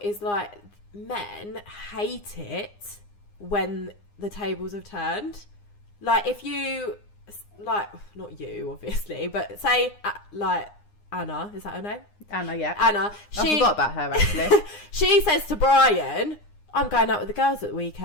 is like, men hate it when the tables have turned. Like, if you, like, not you, obviously, but say, like, Anna, is that her name? Anna, yeah. Anna. I forgot about her, actually. She says to Brian, I'm going out with the girls at the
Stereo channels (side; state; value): right; late; 9.8 ms